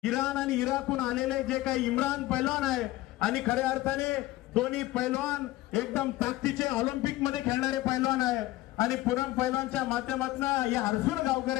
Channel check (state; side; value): quieter; right; 17.3 dB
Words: Iran आणि इराकहून आलेले जे काही इम्रान पैलवान आहे आणि खऱ्या अर्थाने दोन्ही पैलवान एकदम ताकदीचे ऑलिम्पिक मध्ये खेळणारे पैलवान आहे आणि पूनम पैलवानच्या माध्यमातून या हर्सुल